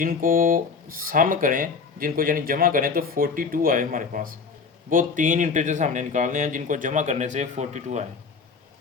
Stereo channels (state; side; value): quieter; right; 5.1 dB